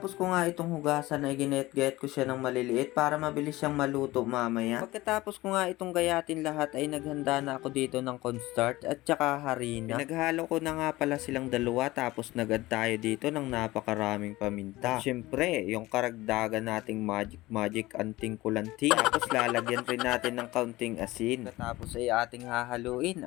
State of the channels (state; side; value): quieter; right; 18.8 dB